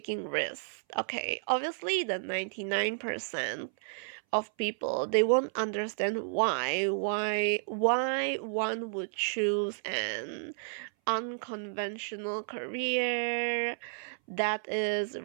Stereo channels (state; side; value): silent; left; 57 dB below the other